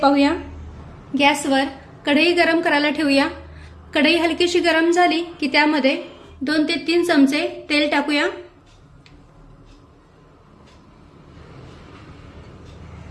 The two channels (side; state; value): both; identical; correlation 1.00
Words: गॅसवर कढई गरम करायला ठेवूया। कढई हलकीशी गरम झाली की त्यामध्ये 2 ते 3 चमचे तेल टाकूया।